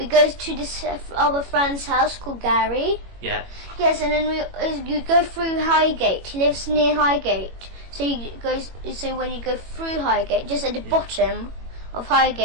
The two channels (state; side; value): late; left; 21 ms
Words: go to our friend's house called Gary. Yeah. Yes, and then you go through Highgate. He lives near Highgate, so when you go through Highgate, just at the bottom of